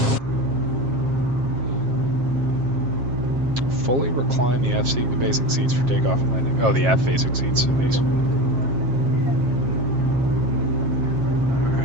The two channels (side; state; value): left; late; 7.4 ms